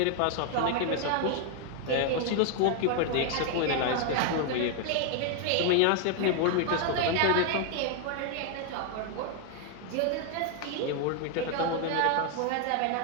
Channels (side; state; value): both; different; correlation 0.00